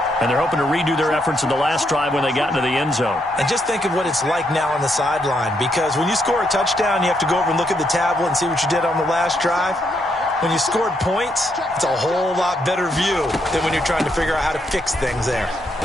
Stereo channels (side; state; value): both; normal; correlation 0.77